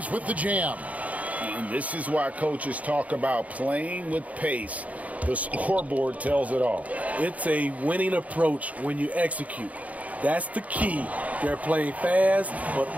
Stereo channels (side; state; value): left; late; 0.070 ms